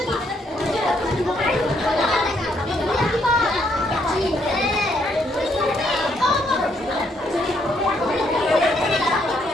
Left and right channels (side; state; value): both; normal; correlation 0.72